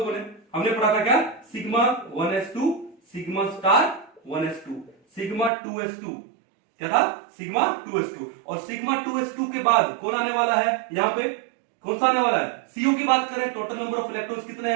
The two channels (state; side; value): drops out; left; at 5.5 s